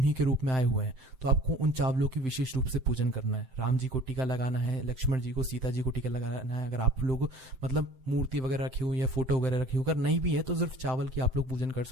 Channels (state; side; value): late; left; 7.7 ms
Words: के रूप में आए हुए हैं। तो आपको उन चावलों की विशेष रूप से पूजन करना है। राम जी को टीका लगाना है, लक्ष्मण जी को, सीता जी को टीका लगाना है। अगर आप लोग मतलब मूर्ति वगैरह रखी हुई या फोटो वगैरह रखी हुई, अगर नहीं भी है तो सिर्फ चावल की आप लोग पूजन कर